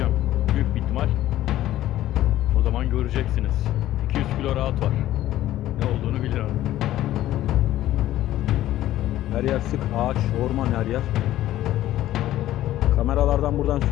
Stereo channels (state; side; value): quieter; right; 13.9 dB